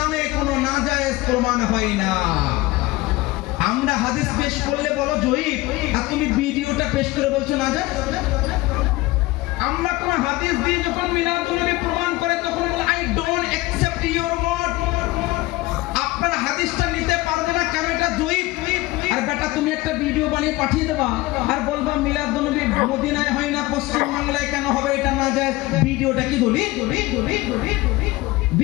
কোনো নাজায়েজ প্রমাণ হয় না। আমরা হাদিস পেশ করলে বলো জয়ীব, আর তুমি ভিডিওটা পেশ করে বলছো নাজায়েজ। আমরা কোন হাদিস দিয়ে যখন মিলাদুন নবী প্রমাণ করে তখন বলে I don't accept your word. আপনারা হাদিসটা নিতে পারবে না কেন? এটা জয়ীব। আর বেটা তুমি একটা ভিডিও বানিয়ে পাঠিয়ে দেবা আর বলবা মিলাদুন নবী মদিনায় হয় না পশ্চিম বাংলায় কেন হবে, এটা নাজায়েজ। ভিডিওটা কি দলিল?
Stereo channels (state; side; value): quieter; right; 20.1 dB